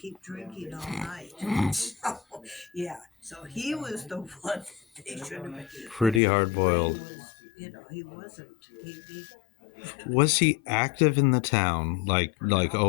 drinking all night. So he was the one they should have been. Pretty hard-boiled. He wasn't. He Was he active in the town? Like,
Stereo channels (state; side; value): drops out; right; at 6.2 s